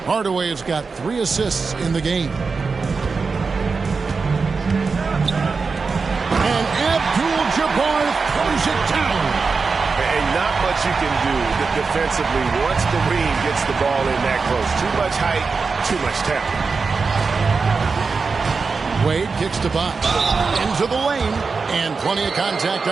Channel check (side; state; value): left; quieter; 4.7 dB